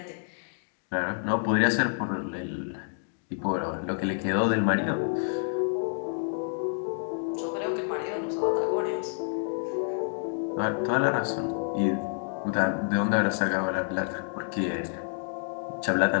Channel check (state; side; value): silent; right; digital silence